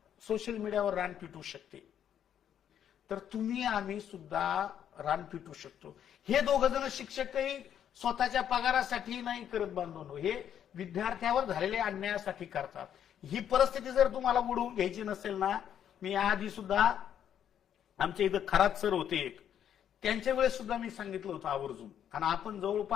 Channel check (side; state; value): right; quieter; 9.5 dB